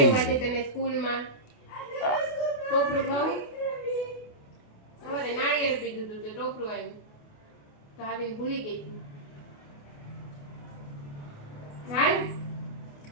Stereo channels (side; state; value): right; late; 28 ms